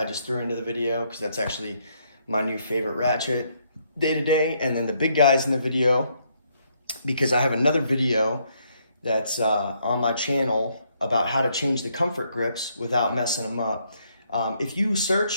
just threw into the video because that's actually my new favorite ratchet day to day. And then the big guys in the video, because I have another video that's on my channel about how to change the comfort grips without messing them up. If you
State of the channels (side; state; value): both; inverted; correlation -0.72